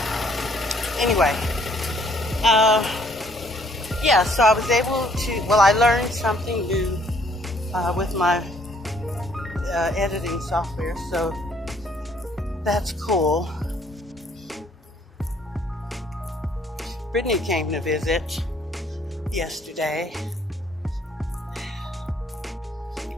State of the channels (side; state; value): both; normal; correlation 0.64